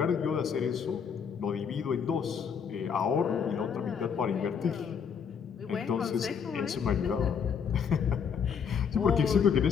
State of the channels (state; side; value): quieter; right; 6.9 dB